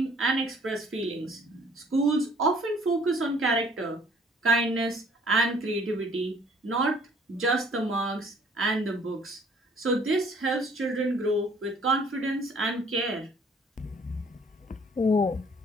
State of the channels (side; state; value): both; normal; correlation 0.57